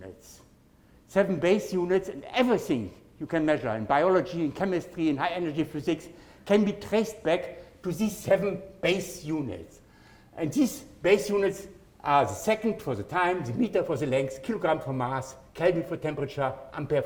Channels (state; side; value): identical; both; correlation 1.00